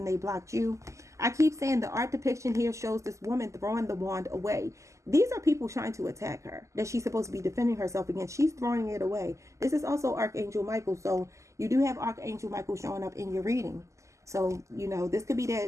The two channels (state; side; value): late; left; 0.15 ms